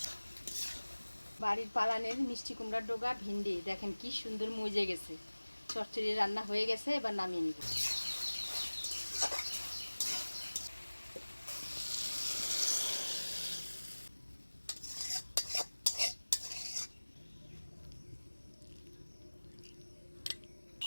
বাড়ির পালানের মিষ্টি কুমড়ার ডোগা ভিন্ডি দেখেন কি সুন্দর মজে গেছে। চচ্চড়ি রান্না হয়ে গেছে, এবার নামিয়ে নিব।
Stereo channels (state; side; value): inverted; both; correlation -1.00